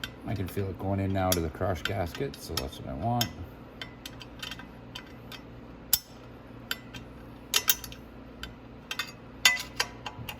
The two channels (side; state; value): both; identical; correlation 1.00